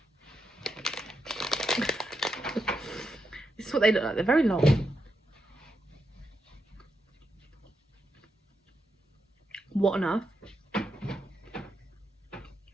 This is what they look like. They're very long. What on earth?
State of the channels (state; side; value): normal; both; correlation 0.84